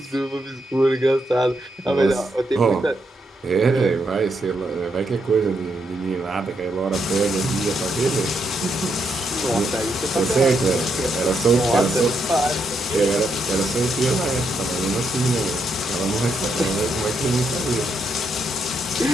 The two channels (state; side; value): normal; both; correlation 0.79